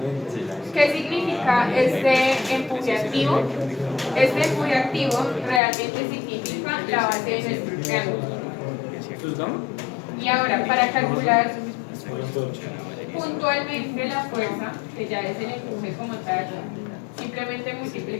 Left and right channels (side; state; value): right; drops out; at 5.6 s